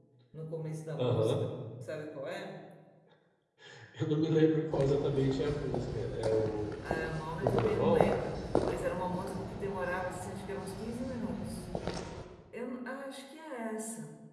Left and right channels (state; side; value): identical; both; correlation 1.00